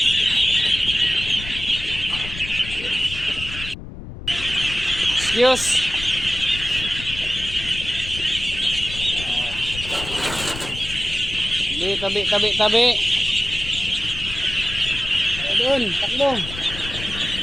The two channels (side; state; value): left; noise; rumble, 11 dB below the sound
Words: Excuse. Tabi. Doon, takbo.